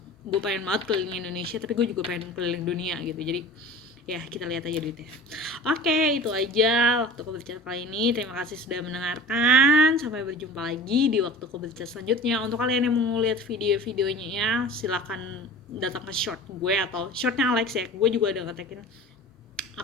banget keliling Indonesia, tapi gue juga pengen keliling dunia gitu. Jadi ya kita lihat aja duitnya. Oke, itu aja waktu Kau Berbicara kali ini. Terima kasih sudah mendengarkan. Sampai berjumpa lagi di waktu Kau Berbicara selanjutnya. Untuk kalian yang mau lihat video-videonya ya, silakan datang ke short gue atau shortnya Alex ya. Gue juga udah ngetekin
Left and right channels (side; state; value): both; normal; correlation 0.39